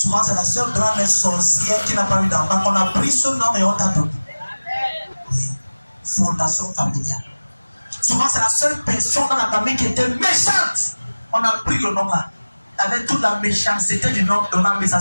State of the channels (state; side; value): inverted; both; correlation -1.00